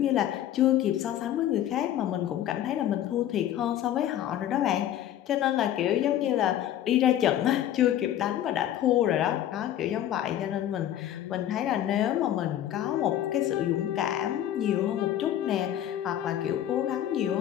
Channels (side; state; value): right; quieter; 11.6 dB